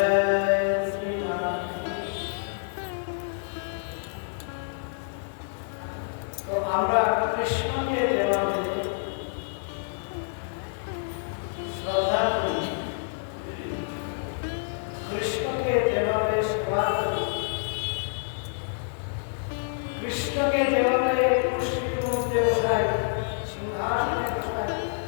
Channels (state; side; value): silent; right; digital silence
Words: শ্রীরাম। তো আমরা কৃষ্ণকে যেভাবে শ্রদ্ধা করি, কৃষ্ণকে যেভাবে সেবা করি, কৃষ্ণকে যেভাবে কুর্সির মধ্যে বসাই, সিংহাসনে বসাই,